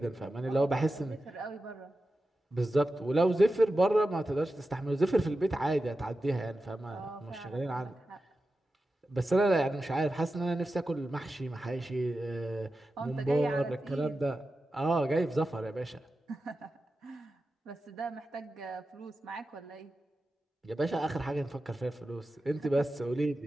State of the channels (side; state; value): both; normal; correlation 0.92